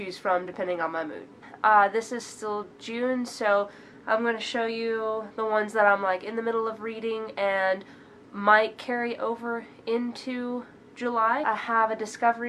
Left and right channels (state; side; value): identical; both; correlation 1.00